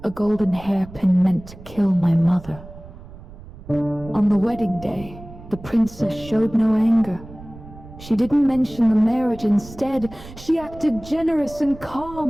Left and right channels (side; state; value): right; noise; rumble, 17 dB below the sound